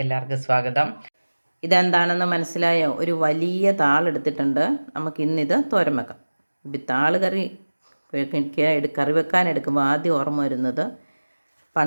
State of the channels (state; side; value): inverted; both; correlation -1.00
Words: എല്ലാവർക്കും സ്വാഗതം. ഇതെന്താണെന്ന് മനസ്സിലായോ? ഒരു വലിയ താളെടുത്തിട്ടുണ്ട്. നമുക്കിന്നിത് തോരൻ വെക്കാം. താള് കറി കറി വെക്കാൻ എടുക്കുമ്പോൾ ആദ്യം ഓർമ്മ വരുന്നത്